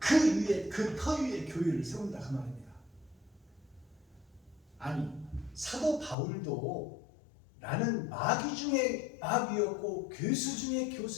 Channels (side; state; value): right; drops out; at 6.2 s